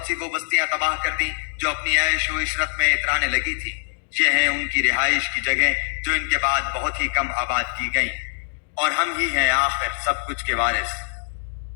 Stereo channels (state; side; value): silent; right; digital silence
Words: سی وہ بستیاں تباہ کر دی جو اپنی عیش و عشرت میں اترانے لگی تھی، یہ ہیں ان کی رہائش کی جگہیں جو ان کے بعد بہت ہی کم آباد کی گئیں، اور ہم ہی ہیں آخر سب کچھ کے وارث۔